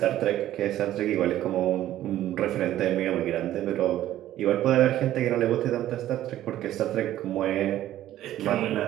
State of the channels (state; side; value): quieter; left; 13.2 dB